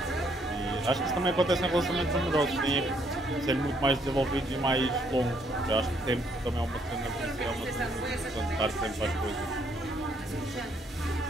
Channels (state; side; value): normal; both; correlation 0.69